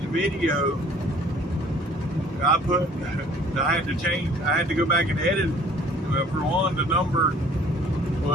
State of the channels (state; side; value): normal; both; correlation 0.53